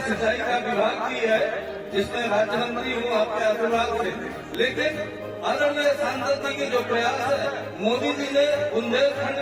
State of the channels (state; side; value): identical; both; correlation 1.00